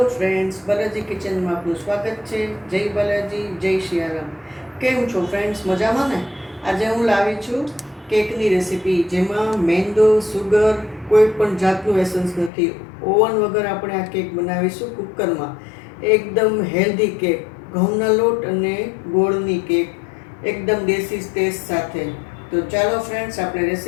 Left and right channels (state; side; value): drops out; right; at 12.5 s